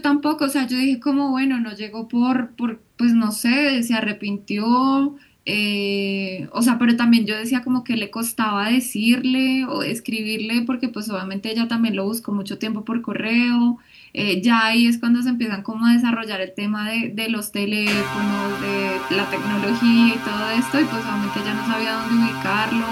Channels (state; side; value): identical; both; correlation 1.00